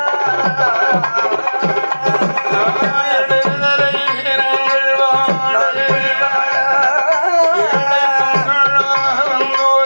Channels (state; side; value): inverted; both; correlation -1.00